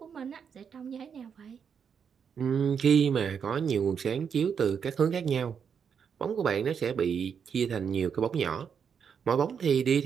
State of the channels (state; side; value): quieter; left; 7.0 dB